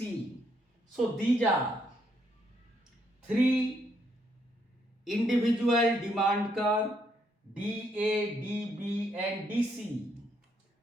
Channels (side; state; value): both; normal; correlation 0.74